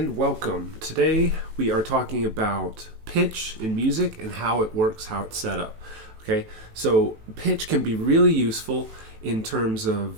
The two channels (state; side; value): late; left; 18 ms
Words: welcome. Today we are talking about pitch in music and how it works, how it's set up. Okay, so pitch can be really useful in terms